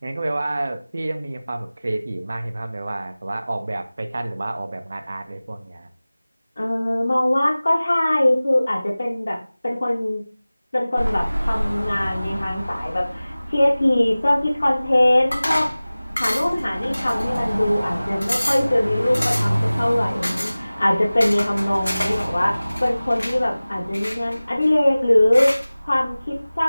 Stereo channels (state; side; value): inverted; both; correlation -0.98